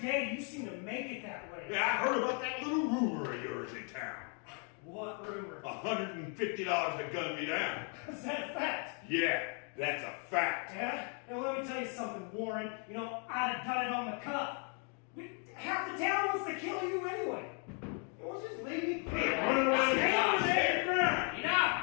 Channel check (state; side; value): quieter; right; 39.8 dB